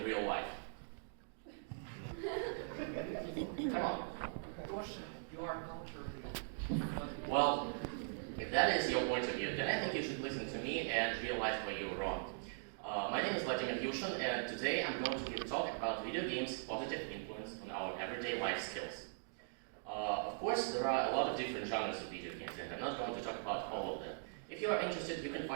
real life. Come on. You are culturally. Well, if that is your point of view, then I think you should listen to me and realize why you were wrong. My name is Vladimir Yushin, and today I'm going to give a talk about video games' positive influence on our everyday life skills. Of course, there are a lot of different genres of video games, and I'm not going to talk about all of them. If you are interested, you can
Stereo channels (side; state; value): left; silent; digital silence